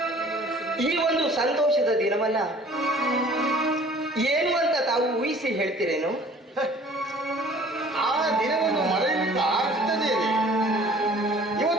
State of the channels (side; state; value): both; normal; correlation 0.51